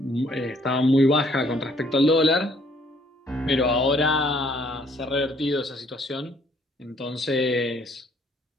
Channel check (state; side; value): normal; both; correlation 0.64